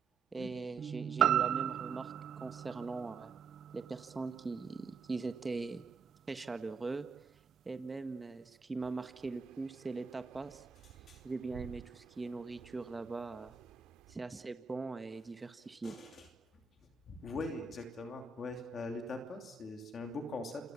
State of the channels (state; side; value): quieter; left; 5.1 dB